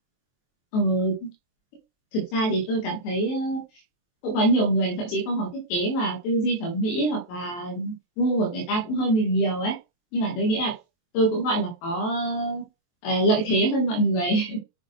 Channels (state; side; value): late; right; 23 ms